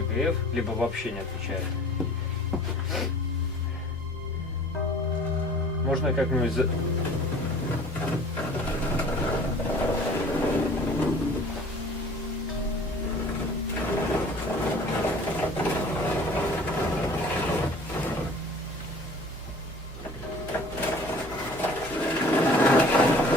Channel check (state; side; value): normal; both; correlation 0.48